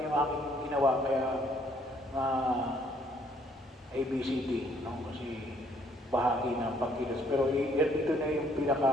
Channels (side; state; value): both; normal; correlation 0.65